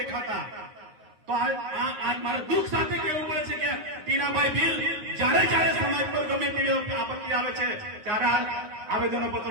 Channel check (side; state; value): left; late; 9.6 ms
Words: તો આ મારે દુઃખ સાથે કહેવું પડે છે કે ટીનાભાઈ ભીલ જ્યારે સમાજ પર ગમે તેવી આપત્તિ આવે છે, ત્યારે આવેદનો